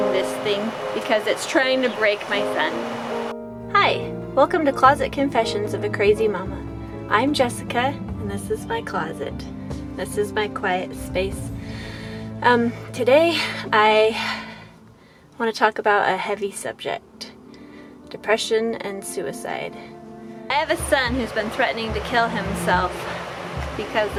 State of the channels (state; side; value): identical; both; correlation 1.00